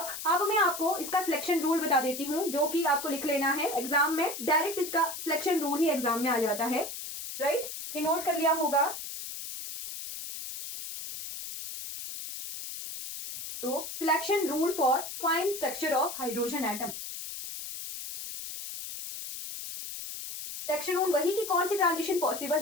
मैं आपको इसका सिलेक्शन रूल बता देती हूँ, जो कि आपको लिख लेना है एग्जाम में, डायरेक्ट इसका सिलेक्शन रूल ही एग्जाम में आ जाता है, राइट। ये नोट कर लिया होगा। तो selection rule for fine structure of hydrogen atom. Selection rule वही कि कौन सी ट्रांजिशन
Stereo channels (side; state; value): left; noise; hiss, 8 dB below the sound